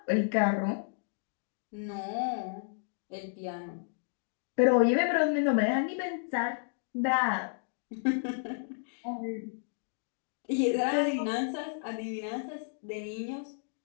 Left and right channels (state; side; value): silent; right; digital silence